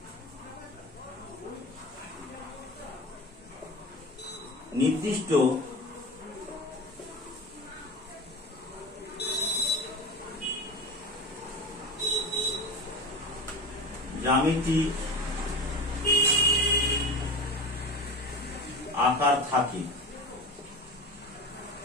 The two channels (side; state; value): both; normal; correlation 0.28